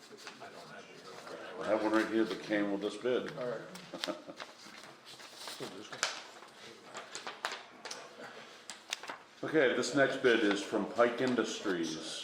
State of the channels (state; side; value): identical; both; correlation 1.00